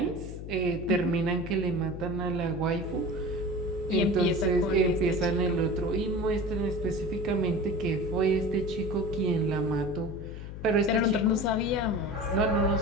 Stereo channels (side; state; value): left; noise; hum, 10 dB below the sound